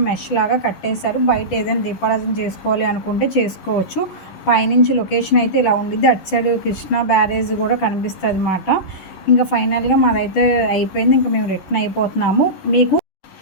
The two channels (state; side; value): late; right; 11 ms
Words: మెష్ లాగా కట్టేశారు. బయట ఏదైనా దీపారాధన చేసుకోవాలి అనుకుంటే చేసుకోవచ్చు. పైనుంచి లొకేషన్ అయితే ఇలా ఉండిద్ది. అటు సైడ్ కృష్ణా బ్యారేజ్ కూడా కనిపిస్తుంది అన్నమాట. ఇంకా ఫైనల్గా మాదైతే అయిపోయింది. ఇంకా మేము రిటర్న్ అయిపోతున్నాము. మీకు